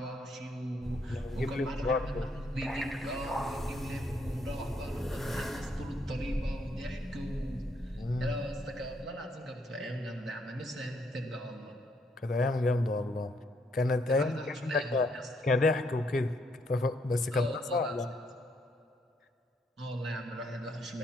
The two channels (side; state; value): both; normal; correlation 0.73